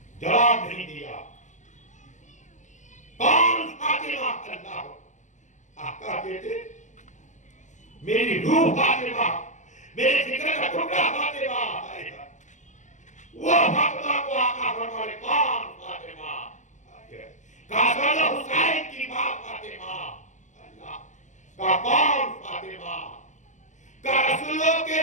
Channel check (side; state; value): right; late; 0.35 ms